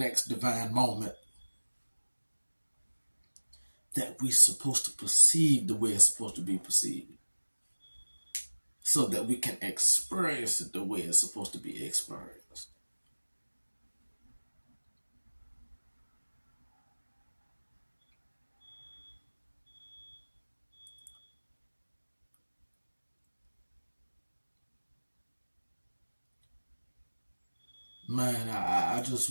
divine moment that we're supposed to perceive the way it's supposed to be perceived, so that we can experience it the way it's supposed to be experienced. Man, I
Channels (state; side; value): inverted; both; correlation -1.00